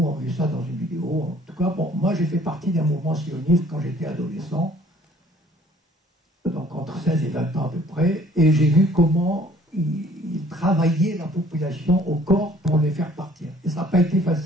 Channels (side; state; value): both; normal; correlation 0.56